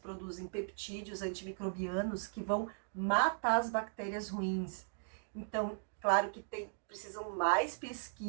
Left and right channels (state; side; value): silent; left; digital silence